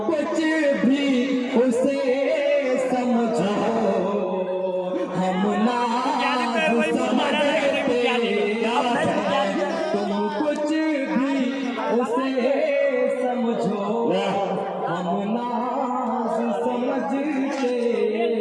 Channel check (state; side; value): identical; both; correlation 1.00